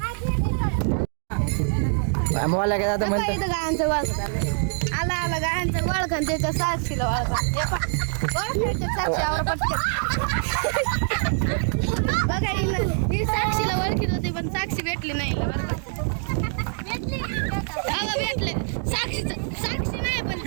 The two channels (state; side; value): silent; left; 62 dB below the other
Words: मला काय आता म्हणतो इथं गायांचं वळख आला आला गायांचं वळख आणि त्याच्या साक्षीला वळखा साक्षीवर बघा ही साक्षीला ओळखीत होती पण साक्षी भेटली नाही भेटले साक्षी नाही पण